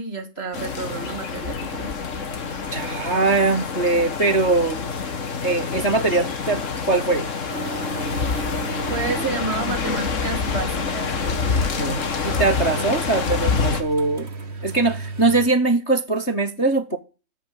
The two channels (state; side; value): late; right; 3.7 ms